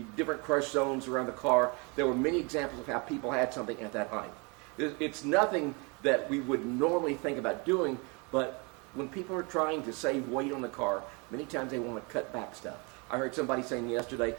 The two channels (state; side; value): quieter; left; 31.0 dB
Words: different crush zones around the car, there were many examples of how people had something at that height. It's nothing that we would normally think about doing, but when people are trying to save weight on the car, many times they want to cut back stuff. I heard somebody saying yesterday,